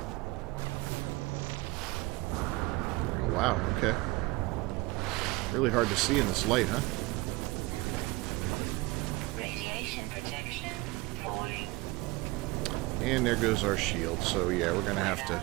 Oh, wow. Okay. Really hard to see in this light, huh? And there goes our shield, so yeah, we're gonna have to...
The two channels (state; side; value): quieter; left; 22.2 dB